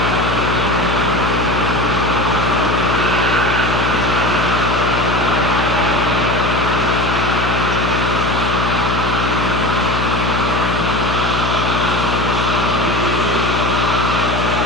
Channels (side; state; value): left; noise; hum, 2 dB below the sound